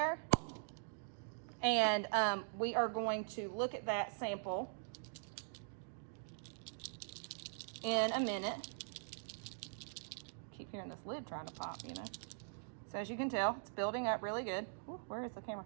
And we are going to look at that sample in a minute. Keep hearing this lid trying to pop, you know. So as you can tell, it's building up really good. Ooh, where is the camera?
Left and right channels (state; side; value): silent; left; digital silence